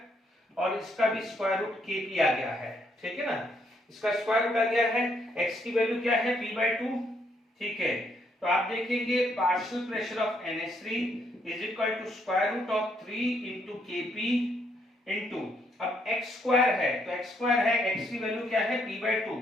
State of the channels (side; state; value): both; normal; correlation 0.73